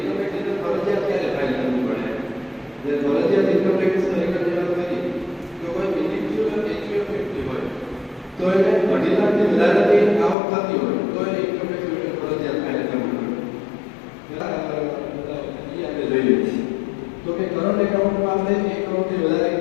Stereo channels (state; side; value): drops out; right; at 10.4 s